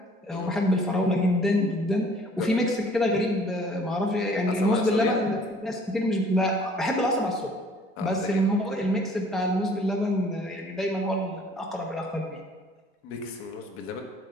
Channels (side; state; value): both; normal; correlation 0.55